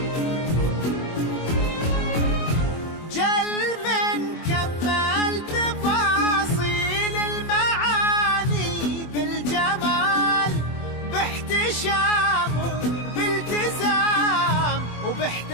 جل من كمل تفاصيل المعاني بالجمال، باحتشام وبالتزام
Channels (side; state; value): right; late; 24 ms